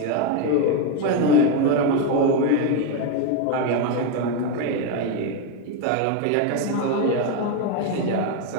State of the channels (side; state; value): both; different; correlation 0.02